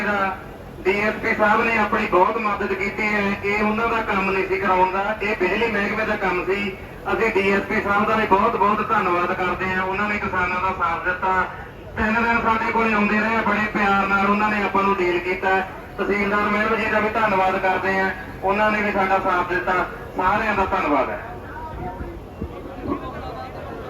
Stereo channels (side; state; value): both; identical; correlation 1.00